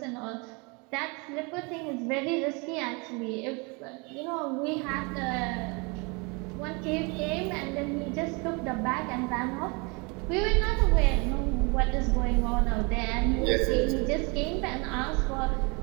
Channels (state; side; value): quieter; left; 30.3 dB